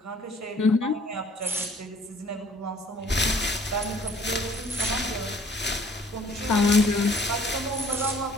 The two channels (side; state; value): both; normal; correlation 0.56